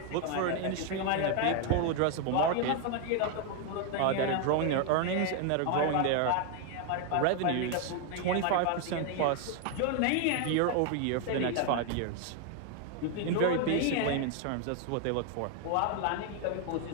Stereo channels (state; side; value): different; both; correlation 0.01